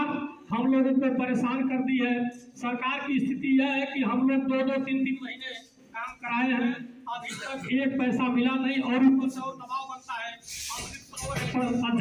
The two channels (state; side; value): identical; both; correlation 1.00